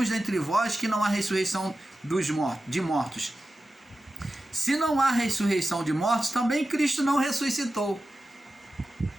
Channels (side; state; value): both; normal; correlation 0.93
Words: dentre vós que não há ressurreição de mortos. Se não há ressurreição de mortos, também Cristo não ressuscitou.